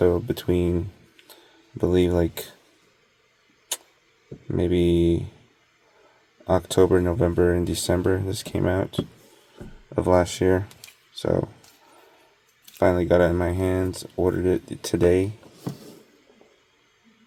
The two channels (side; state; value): both; identical; correlation 1.00